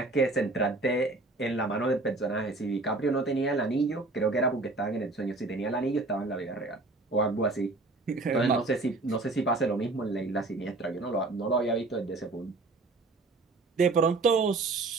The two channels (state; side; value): quieter; left; 3.3 dB